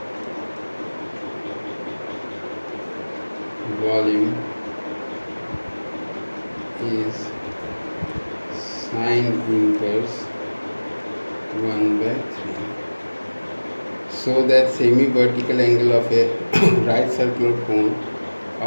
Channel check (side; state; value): both; inverted; correlation -1.00